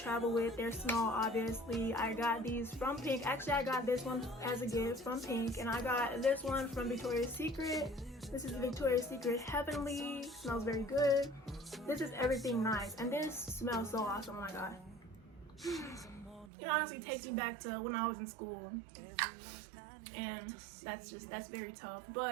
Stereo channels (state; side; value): drops out; left; at 16.5 s